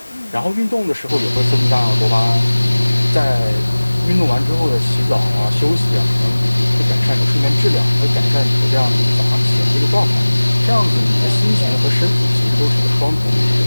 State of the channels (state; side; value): inverted; both; correlation -1.00